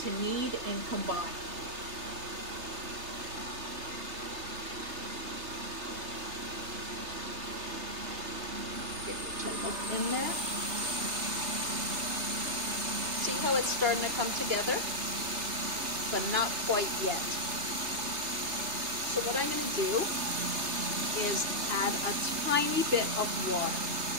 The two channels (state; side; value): late; left; 3.2 ms